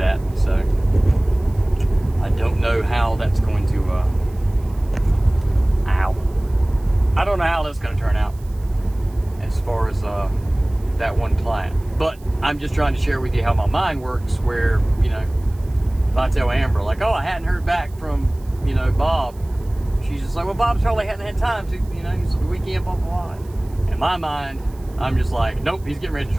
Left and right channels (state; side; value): noise; right; hiss, 27 dB below the sound